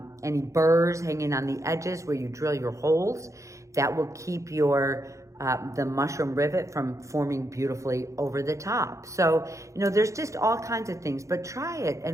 any burrs hanging on the edges where you drill your holes. That will keep your the mushroom rivet from forming beautifully over the top. So, you know, there's just all kinds of things, but try it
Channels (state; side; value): late; left; 0.15 ms